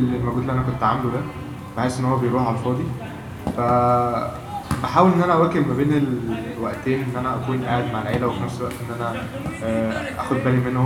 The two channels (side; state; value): both; identical; correlation 1.00